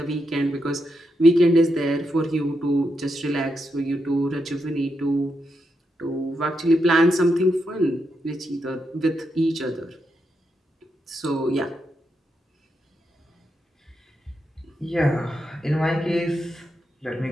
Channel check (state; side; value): normal; both; correlation 0.83